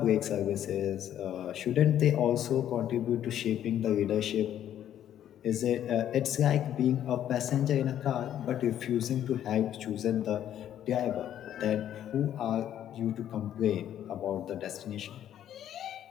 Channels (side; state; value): right; quieter; 10.9 dB